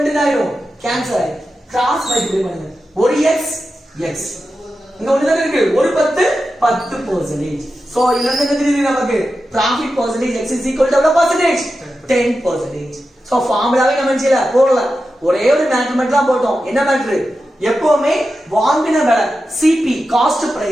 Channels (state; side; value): normal; both; correlation 0.91